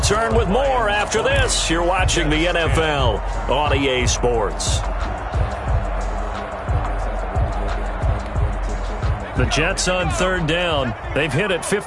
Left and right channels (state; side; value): identical; both; correlation 1.00